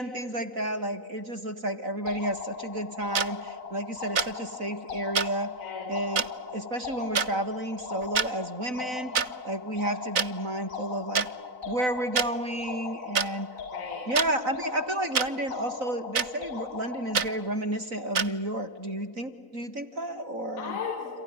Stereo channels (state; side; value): late; left; 4.0 ms